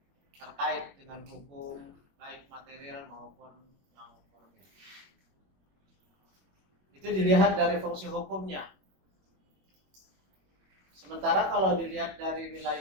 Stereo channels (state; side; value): late; left; 21 ms